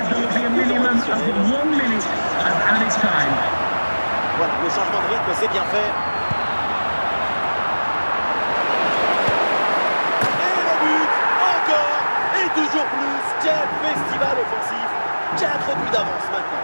Voilà, le changement de rythme, c'est bien fait. Et le but, encore, et toujours plus. Quel festival offensif. 4 buts d'avance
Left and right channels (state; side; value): inverted; both; correlation -1.00